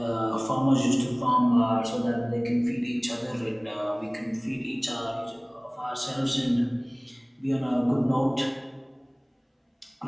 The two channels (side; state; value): both; identical; correlation 1.00